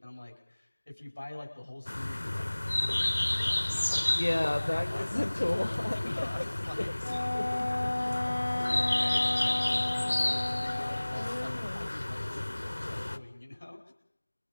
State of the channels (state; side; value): inverted; both; correlation -1.00